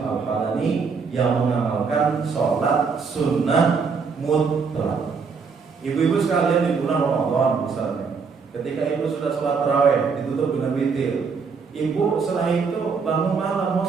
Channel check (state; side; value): quieter; left; 5.3 dB